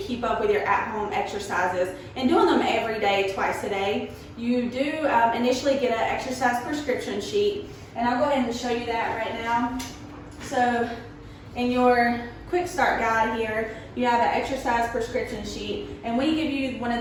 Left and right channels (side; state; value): both; identical; correlation 1.00